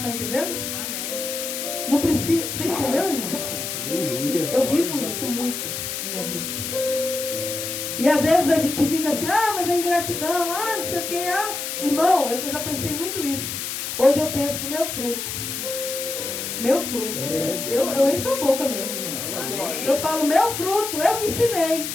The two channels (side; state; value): left; noise; hiss, 4 dB below the sound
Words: entendendo? Amém. Não precisa. Você entendeu, irmão? Amém. Eu vivo isso muito na minha vida. E às vezes a gente fica assim, mas é ingratidão, não sei o que, Irmão, eu já pensei muito isso. Hoje eu penso, meu fruto. Meu fruto. Eu encho a boca mesmo, irmão. Amém. Eu falo, meu fruto, eu que ensinei.